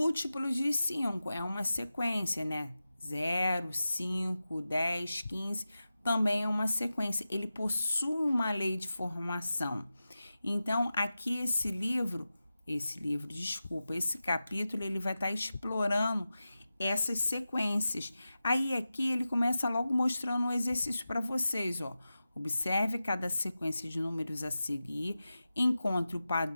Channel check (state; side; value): inverted; both; correlation -0.94